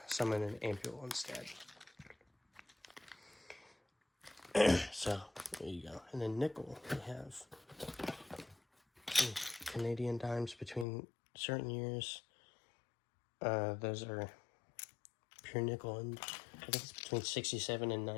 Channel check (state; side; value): drops out; right; at 10.9 s